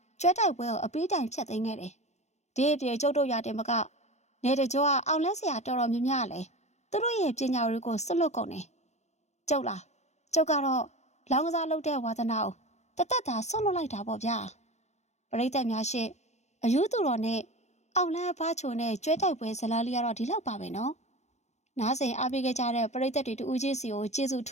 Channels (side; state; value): right; late; 0.33 ms